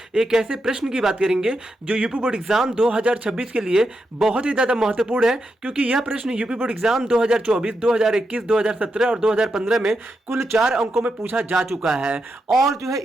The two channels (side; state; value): both; normal; correlation 0.85